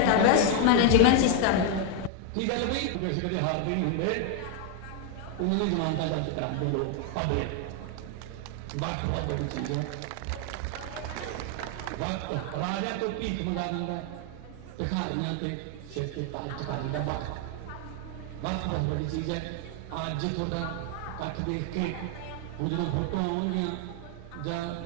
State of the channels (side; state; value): both; different; correlation 0.01